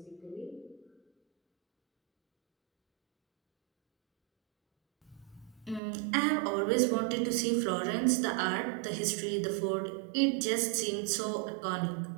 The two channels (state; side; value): drops out; left; at 5.8 s